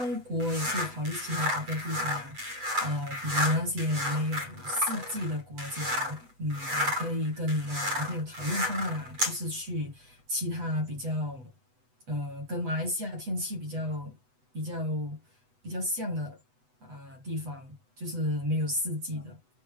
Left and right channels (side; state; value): left; late; 8.0 ms